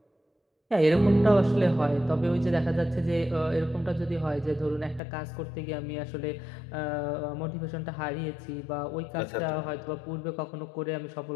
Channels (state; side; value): drops out; right; at 5.0 s